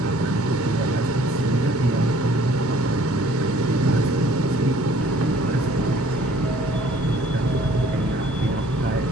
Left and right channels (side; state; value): both; normal; correlation 0.56